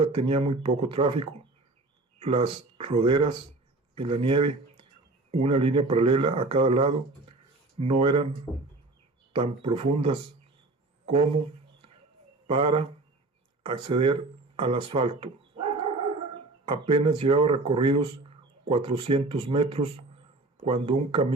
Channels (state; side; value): quieter; left; 3.1 dB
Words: tenía muy poco tráfico. Las roderas en la nieve, una línea paralela a cada lado, no eran tan profundas como para acceder al asfalto. Apenas llevaba recorridos 400 metros cuando un